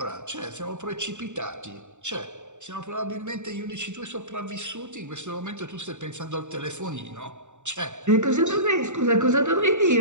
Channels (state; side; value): late; left; 0.84 ms